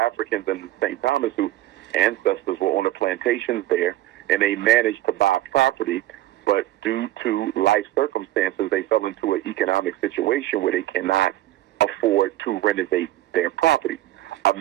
in St. Thomas whose ancestors were on the plantations there, and they managed to buy property, but due to life circumstances, they fell into an economic situation where they cannot afford to renovate their property.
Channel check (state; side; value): quieter; left; 15.1 dB